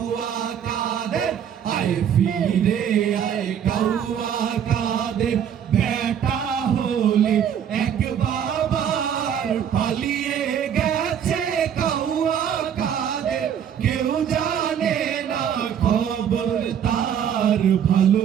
কাদের আয় ফিরে আয় কাউয়া কাদের বেটা হলে এক বাবার পালিয়ে গেছে কাউয়া কাদের কেউ জানে না খবর তার ভালো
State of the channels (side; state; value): left; quieter; 8.8 dB